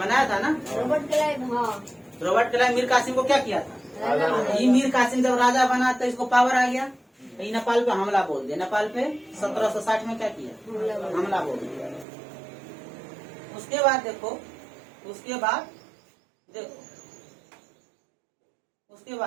था ना रॉबर्ट क्लाइव। हाँ, रॉबर्ट क्लाइव मीर कासिम को क्या किया था? ये मीर कासिम जब राजा बना तो इसको पावर आ गया, ये नेपाल पे हमला बोल दिया। नेपाल पे 1760 में क्या किया? हमला बोल दिया। उसके बाद देखो, उसके बाद देखो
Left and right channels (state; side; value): drops out; left; at 12.1 s